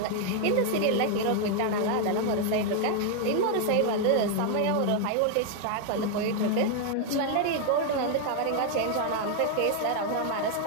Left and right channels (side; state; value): both; different; correlation 0.00